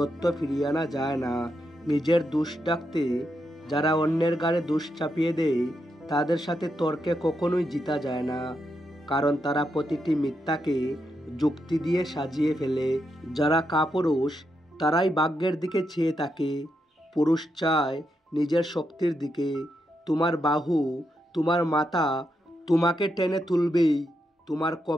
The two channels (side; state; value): both; normal; correlation 0.83